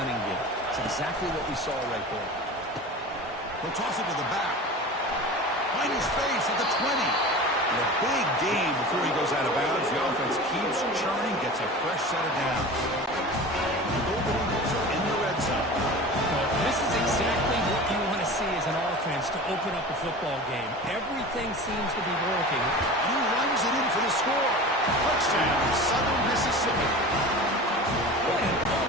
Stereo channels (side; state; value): both; normal; correlation 0.34